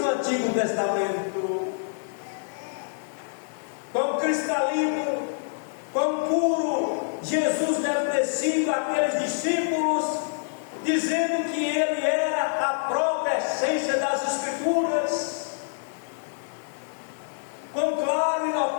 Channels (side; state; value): right; silent; 61 dB below the other